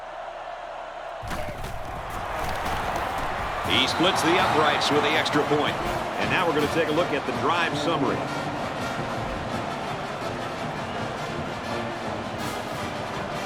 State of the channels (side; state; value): both; identical; correlation 1.00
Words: He splits the uprights with the extra point. And now we're going to take a look at the drive summary.